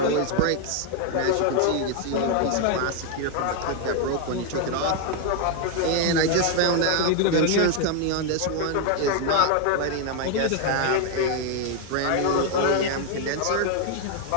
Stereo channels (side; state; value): both; different; correlation 0.01